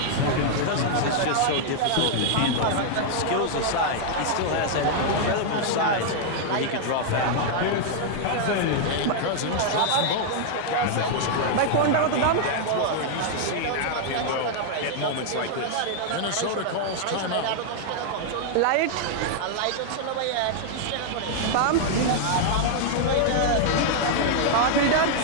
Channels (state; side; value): different; both; correlation -0.01